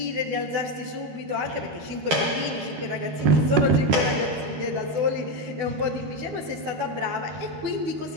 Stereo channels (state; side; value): late; left; 13 ms